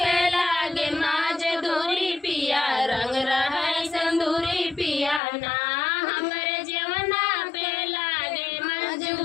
लागे माज दूरी पिया रंग रहे सिंदूरी पिया ना हमरे जेवना पे लागे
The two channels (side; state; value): right; drops out; at 5.2 s